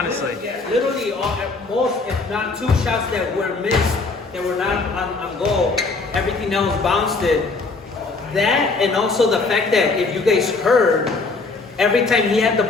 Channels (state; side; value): quieter; right; 3.8 dB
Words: Literally, at most, if not 2 shots that were missed, that were not on goal, everything else bounced it. That, and also the fact that if you guys heard, every time he had the